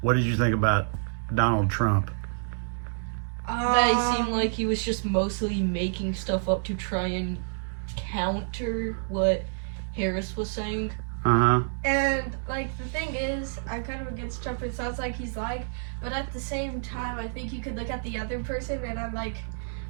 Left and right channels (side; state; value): left; silent; digital silence